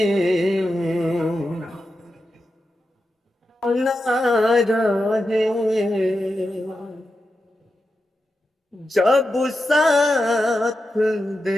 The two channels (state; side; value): normal; both; correlation 0.89